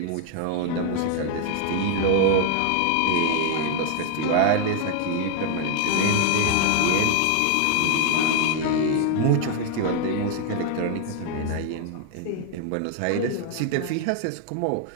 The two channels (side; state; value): both; different; correlation 0.00